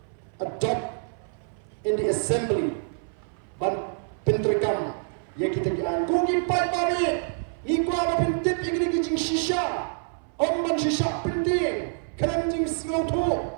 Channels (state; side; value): silent; left; 58 dB below the other